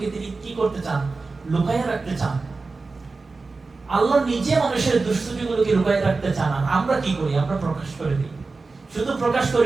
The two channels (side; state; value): left; quieter; 3.9 dB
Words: তিনি কি করতে চান, লুকাইয়ে রাখতে চান। আল্লাহ নিজে মানুষের দুষ্টুটিগুলোকে লুকাইয়ে রাখতে চান, আর আমরা কি করি, আমরা প্রকাশ করে দিই। শুধু প্রকাশ